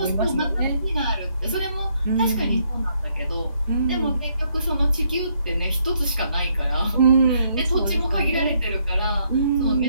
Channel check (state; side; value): inverted; both; correlation -0.72